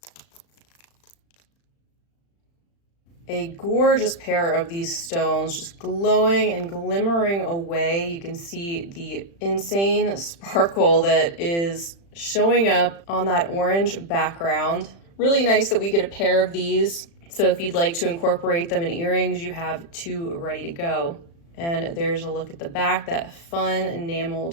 A gorgeous pair of these stones, just glowing and glimmering away. You can see the insane sparkle that is showing up on that orange background. Really nice that we get a pair of these. So if you'd like to incorporate them in earrings, you have 2 ready to go. And there's a look at the back, that fun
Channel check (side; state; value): right; late; 35 ms